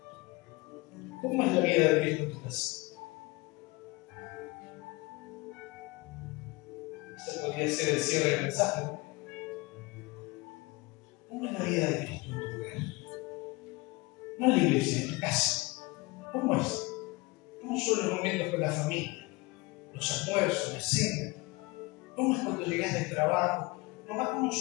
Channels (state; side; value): quieter; right; 23.9 dB